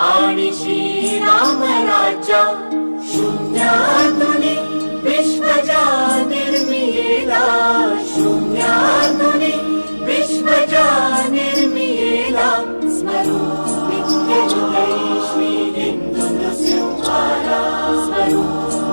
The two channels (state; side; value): inverted; both; correlation -1.00